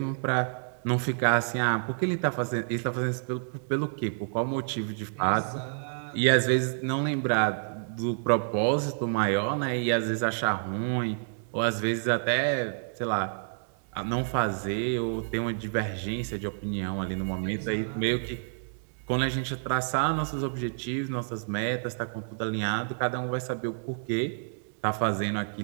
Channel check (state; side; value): silent; left; digital silence